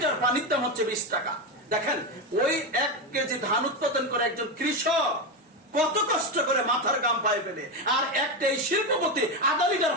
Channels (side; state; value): both; normal; correlation 0.13